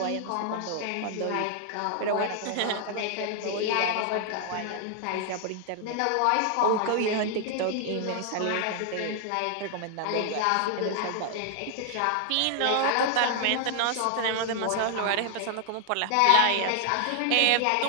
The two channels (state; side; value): different; both; correlation 0.00